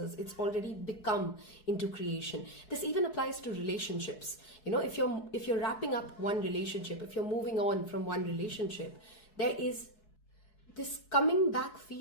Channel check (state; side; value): late; right; 4.7 ms